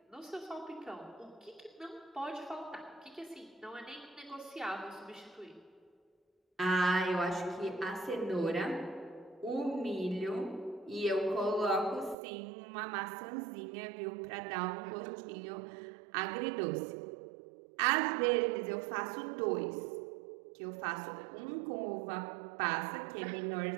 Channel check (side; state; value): left; drops out; at 12.2 s